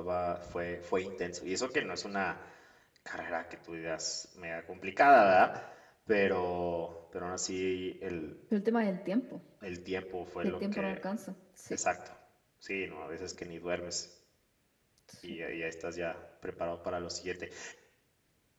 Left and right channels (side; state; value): both; identical; correlation 1.00